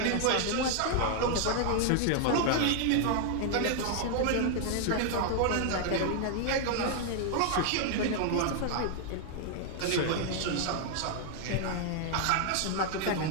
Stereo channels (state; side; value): different; both; correlation 0.00